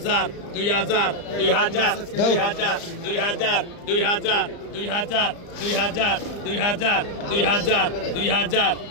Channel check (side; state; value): right; late; 35 ms